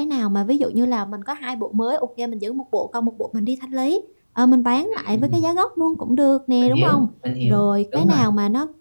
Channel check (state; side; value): inverted; both; correlation -1.00